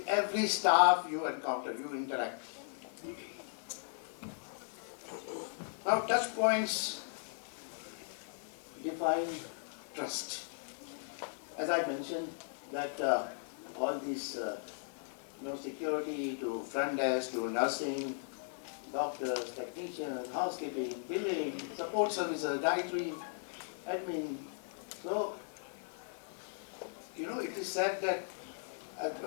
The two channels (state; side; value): silent; right; digital silence